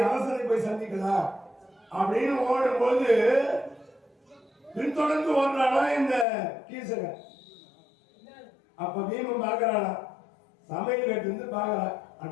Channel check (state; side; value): drops out; right; at 6.2 s